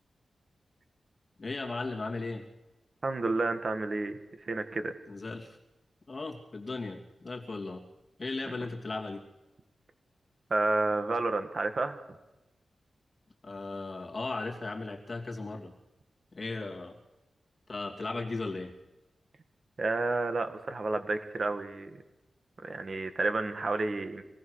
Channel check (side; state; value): both; normal; correlation 0.94